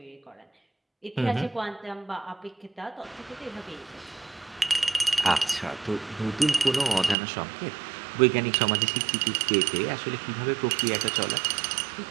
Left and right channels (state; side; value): drops out; left; at 7.2 s